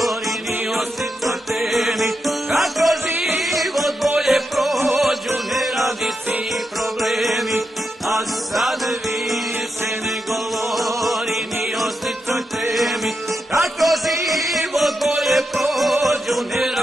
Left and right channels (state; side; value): normal; both; correlation 0.86